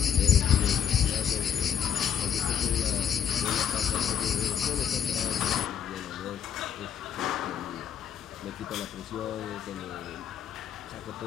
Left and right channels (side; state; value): right; quieter; 8.9 dB